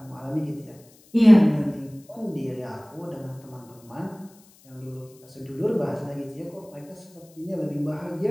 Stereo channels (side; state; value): left; noise; hiss, 27 dB below the sound